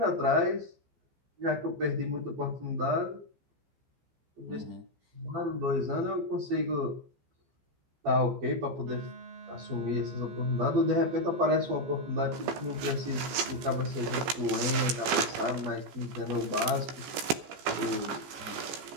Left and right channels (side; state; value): left; late; 15 ms